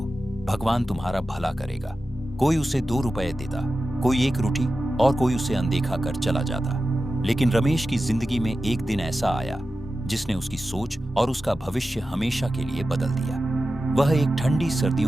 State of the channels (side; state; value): both; normal; correlation 0.93